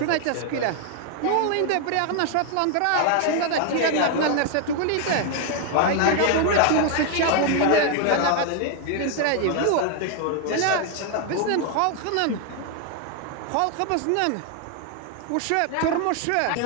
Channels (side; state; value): both; different; correlation 0.00